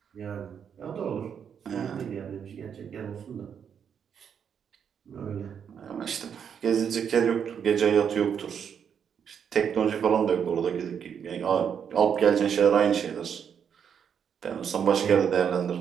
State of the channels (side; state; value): left; quieter; 7.7 dB